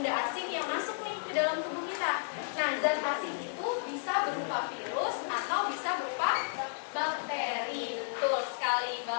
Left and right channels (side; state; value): right; silent; digital silence